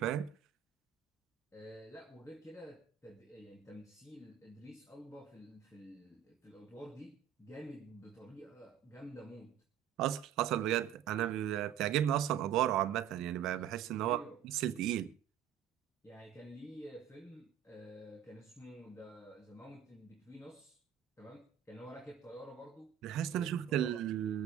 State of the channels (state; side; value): quieter; left; 10.3 dB